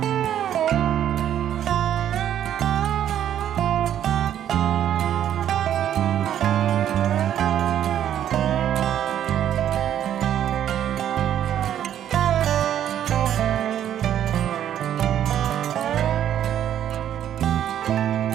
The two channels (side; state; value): left; quieter; 10.5 dB